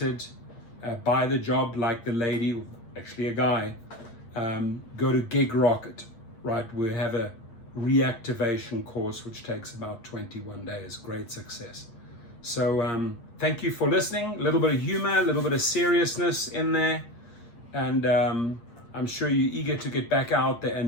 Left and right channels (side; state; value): right; late; 8.6 ms